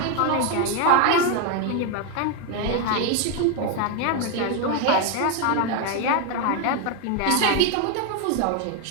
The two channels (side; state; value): both; different; correlation 0.01